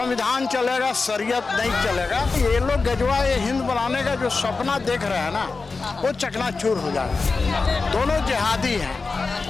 चलेगा, शरीयत नहीं चलेगा। ये लोग गजवा ये हिंद बनाने का जो सपना देख रहे हैं ना, वो चकनाचूर हो जाएगा। दोनों जिहादी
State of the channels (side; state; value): right; quieter; 4.1 dB